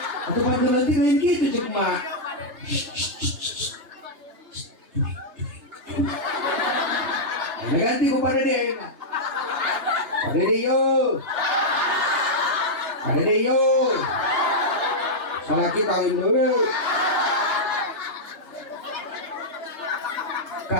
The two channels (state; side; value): late; left; 3.3 ms